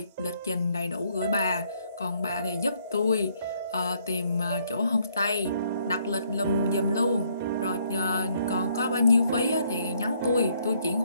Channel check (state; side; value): inverted; both; correlation -0.69